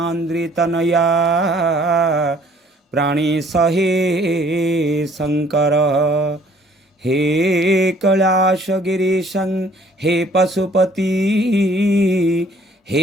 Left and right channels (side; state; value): both; normal; correlation 0.58